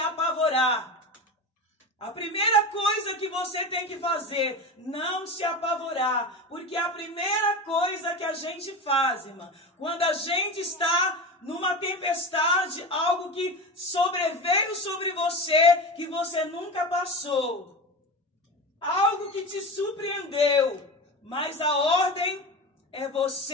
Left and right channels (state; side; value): normal; both; correlation 0.26